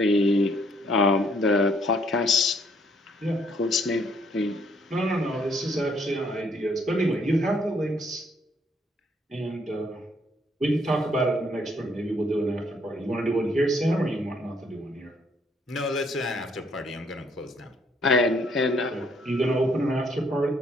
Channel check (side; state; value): both; normal; correlation 0.68